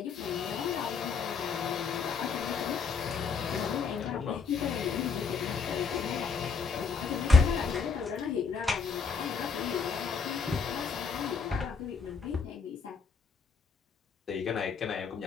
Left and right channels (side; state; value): right; quieter; 5.4 dB